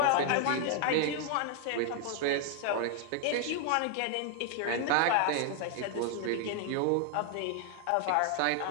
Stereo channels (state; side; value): different; both; correlation 0.00